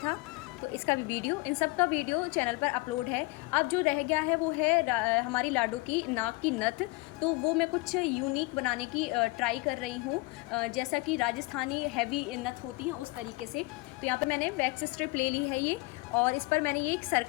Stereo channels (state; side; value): quieter; right; 23.9 dB